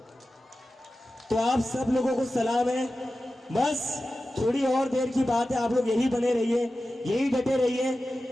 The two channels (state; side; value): normal; both; correlation 0.94